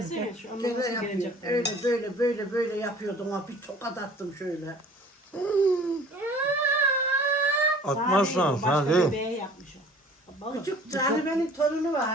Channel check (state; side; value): normal; both; correlation 0.49